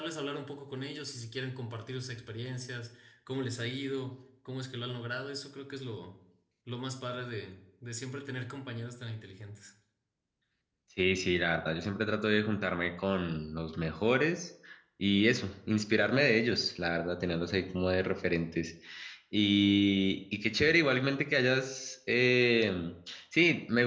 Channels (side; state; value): both; identical; correlation 1.00